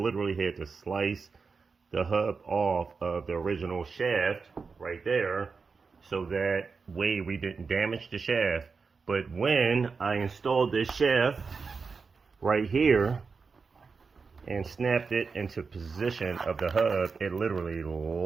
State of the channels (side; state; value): left; quieter; 4.9 dB